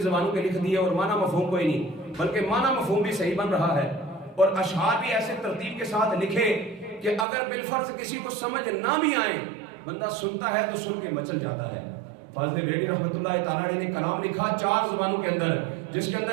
زبانوں کے لکھ دیے اور معنی مفہوم کوئی نہیں، بلکہ معنی مفہوم بھی صحیح بن رہا ہے اور اشعار بھی ایسے ترتیب کے ساتھ لکھے کہ اگر بالفرض کسی کو سمجھ نہ بھی آئے بندہ سنتا ہے تو سن کے مچل جاتا ہے۔ فاضل بریلوی رحمۃ اللہ تعالیٰ نے کلام لکھا 4 زبانوں کے اندر، جس کے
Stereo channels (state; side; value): drops out; left; at 7.2 s